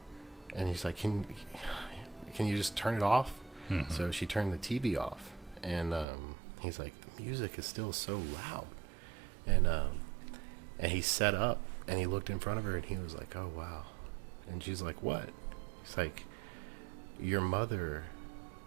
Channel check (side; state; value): left; drops out; at 6.1 s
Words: And he's like, can you just turn it off? Mm-hmm. So she turned the TV off. And he's like, the music is still so loud. And he sat up, and he looked in front of her, and he was like, oh, wow. And she's like, what? He's like, your mother